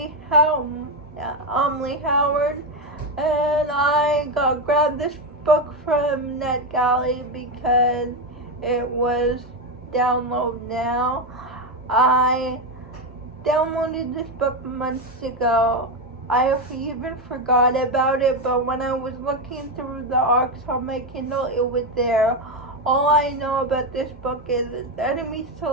Howard. And I grabbed this book from NetGalley because it was download now. I downloaded this book months ago. I even forgot about it, but when I was looking through the arcs on my Kindle, it was there. All I know about this book is it's enemies to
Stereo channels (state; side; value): normal; both; correlation 0.09